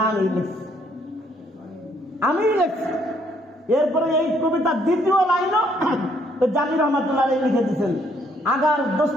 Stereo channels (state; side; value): normal; both; correlation 0.68